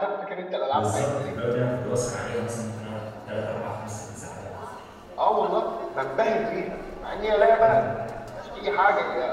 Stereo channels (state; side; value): identical; both; correlation 1.00